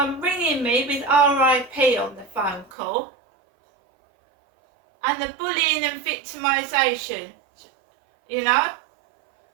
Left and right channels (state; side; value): drops out; left; at 2.7 s